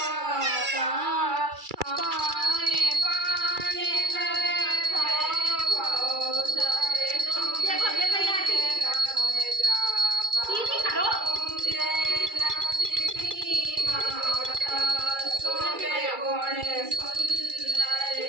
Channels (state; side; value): late; left; 2.3 ms